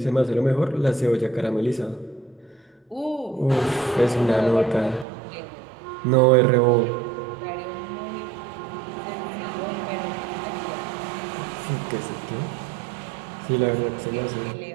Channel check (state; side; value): drops out; left; at 5.1 s